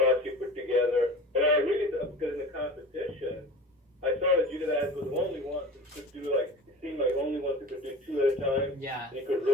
you put together. And I really, because in the competition, I saw that you guys were the only ones who could do it seemed like only ones who could do 2 at a time. Yeah. And you could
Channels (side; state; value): both; normal; correlation 0.36